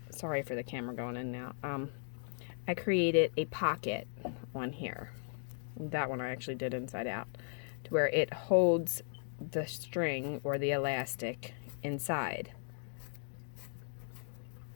sorry for the camera going in now, I created a pocket on here. That one I actually did inside out, to where it holds the string or the elastic inside.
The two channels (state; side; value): silent; right; digital silence